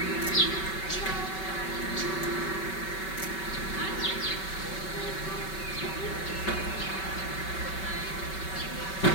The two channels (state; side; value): late; right; 5.3 ms